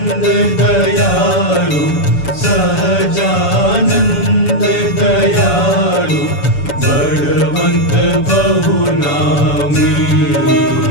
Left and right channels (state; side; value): late; right; 7.0 ms